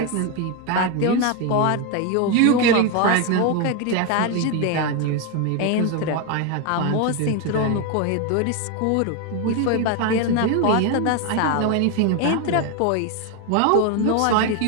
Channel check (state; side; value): different; both; correlation 0.02